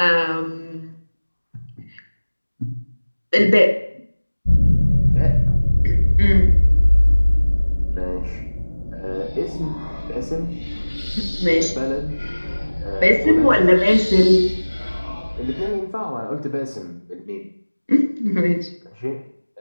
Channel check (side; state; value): both; inverted; correlation -1.00